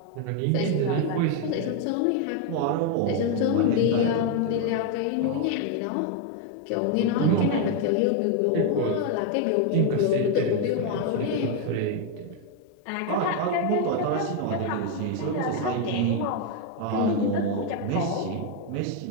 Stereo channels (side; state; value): both; different; correlation 0.01